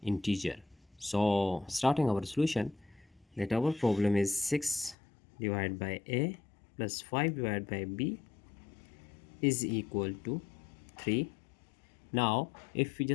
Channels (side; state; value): right; drops out; at 5.0 s